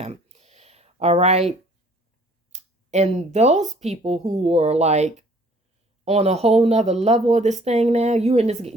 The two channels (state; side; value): normal; both; correlation 0.56